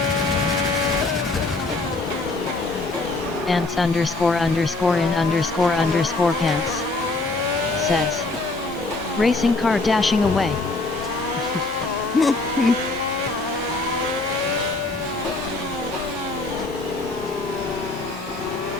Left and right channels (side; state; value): right; quieter; 3.2 dB